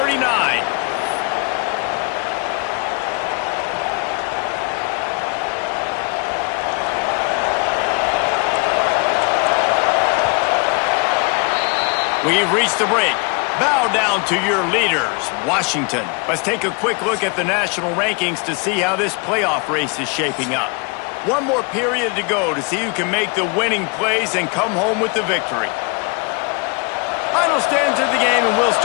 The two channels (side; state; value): right; quieter; 32.3 dB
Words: We've reached the break. Bow down to your leaders, Washington. Let's take a quick look at the national rankings to see how this playoff race is shaping up. One more period to go to see who can make the winning plays and come home with the victory. Final stands of the game, and we'll